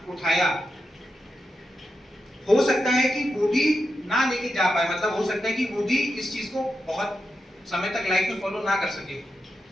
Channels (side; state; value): both; normal; correlation 0.87